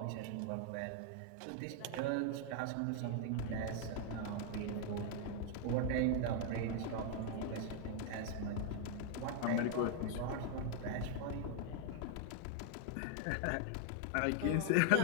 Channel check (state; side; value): different; both; correlation 0.00